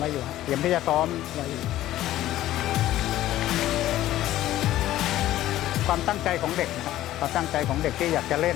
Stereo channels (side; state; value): right; quieter; 14.2 dB